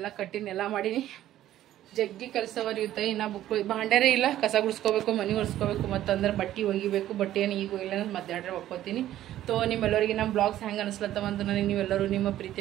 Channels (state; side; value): quieter; left; 13.0 dB